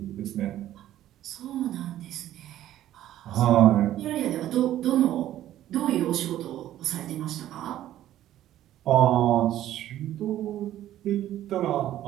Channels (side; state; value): left; quieter; 12.9 dB